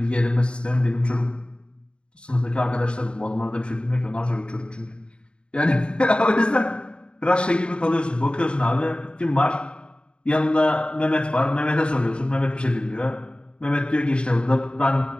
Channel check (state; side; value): late; right; 0.054 ms